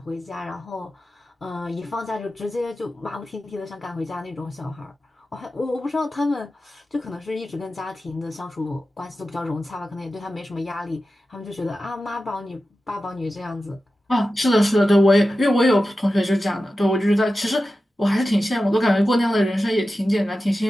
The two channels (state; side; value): normal; both; correlation 0.93